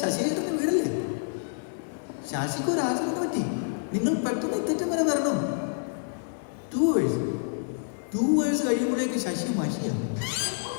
ശശിചേട്ടൻ്റെ വീടല്ലേ? ശശിക്ക് ഒരു ആക്സിഡന്റ് പറ്റി. നിങ്ങൾ പെട്ടെന്ന് ഇത്തറ്റം വരെ വരണം. 2 hours കഴിയുമ്പോഴേക്ക് ശശി മഷിയാണ്.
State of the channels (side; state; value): right; silent; 60 dB below the other